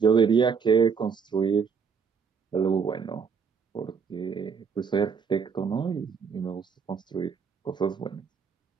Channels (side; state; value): left; quieter; 6.0 dB